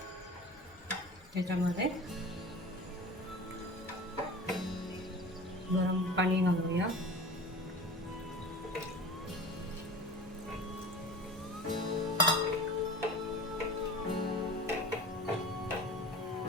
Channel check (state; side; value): noise; left; rumble, 25 dB below the sound